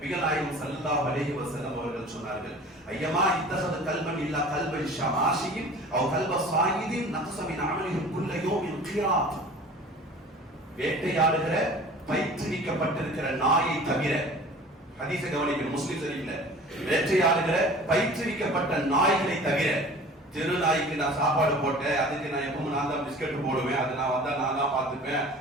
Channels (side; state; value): both; normal; correlation 0.43